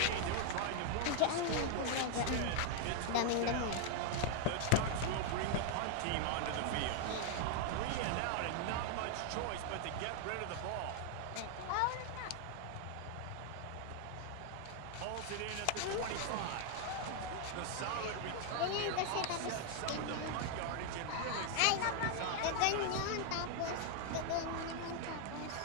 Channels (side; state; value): both; different; correlation 0.00